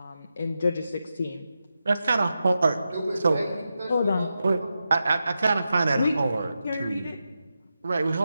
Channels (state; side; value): inverted; both; correlation -0.89